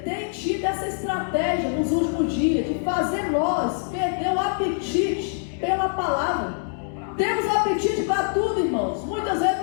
tem tido essa estratégia nos últimos dias de fazer nós perder o apetite pela palavra. Temos apetite para tudo, irmãos. Muitas vezes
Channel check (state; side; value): silent; right; digital silence